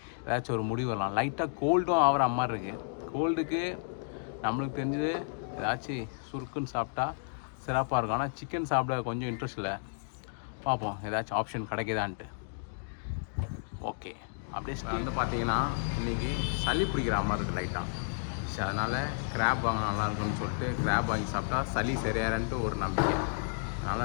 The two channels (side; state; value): right; silent; digital silence